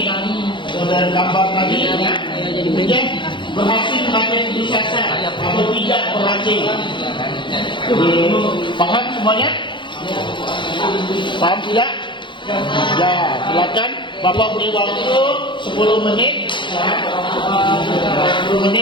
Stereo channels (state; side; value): late; right; 0.23 ms